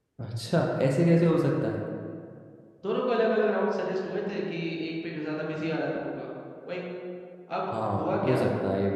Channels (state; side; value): identical; both; correlation 1.00